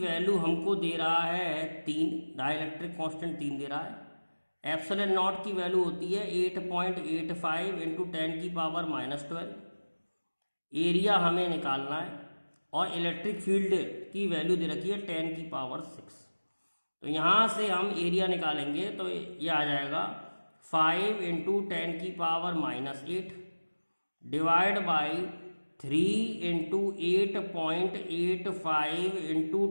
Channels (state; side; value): inverted; both; correlation -1.00